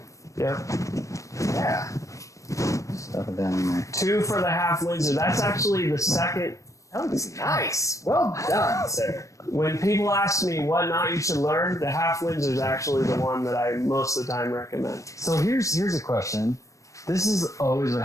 Yep. Yeah. Stuff it down in there. 2 for the half Windsor. That's actually the second. That was nice. Well done, sir. When people ask me what knot you should learn, the half Windsor is actually the one that I most of the time recommend. So here's a question. This is always what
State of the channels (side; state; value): right; late; 0.15 ms